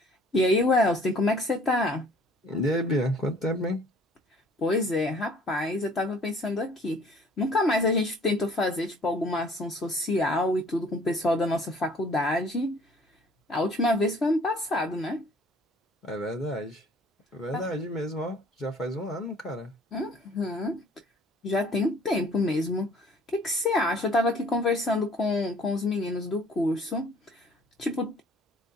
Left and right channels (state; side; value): normal; both; correlation 0.55